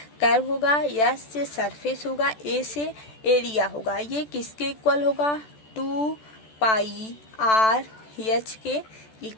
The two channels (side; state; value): right; late; 14 ms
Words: कर्व होगा, एस से सरफेस होगा, ए से एरिया होगा। ये किसके इक्वल होगा, 2 पाई आर एच के